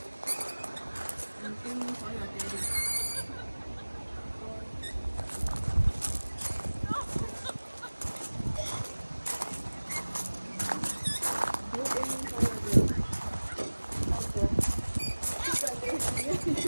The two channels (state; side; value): inverted; both; correlation -1.00